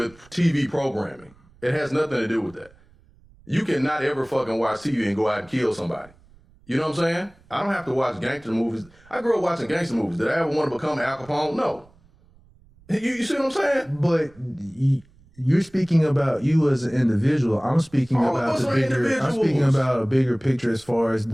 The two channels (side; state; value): right; noise; rumble, 28 dB below the sound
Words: TV programming. It has nothing to do with that. You cannot ever fucking watch TV and go out and kill somebody. You know what I'm saying? I don't have to watch gangster movies. I grew up watching gangster movies. Did I ever want to become Al Capone? No. You see what I'm saying? But you're speaking about you as an individual. I'm speaking about the bigger. I'm speaking about a bigger picture as far as